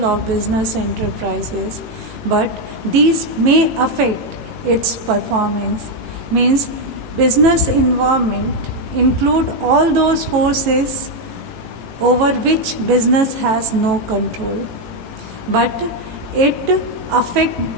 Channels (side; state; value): left; late; 18 ms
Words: of business enterprises, but these may affect its performance. Means business environment include all those forces over which business has no control, but it affect